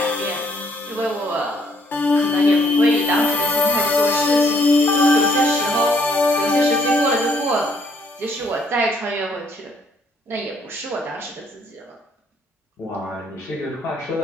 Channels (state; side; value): normal; both; correlation 0.67